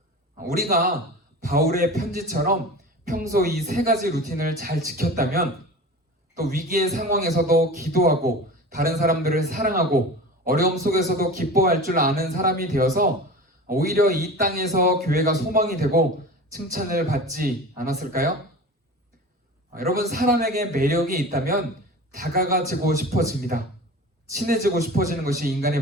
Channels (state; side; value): normal; both; correlation 0.34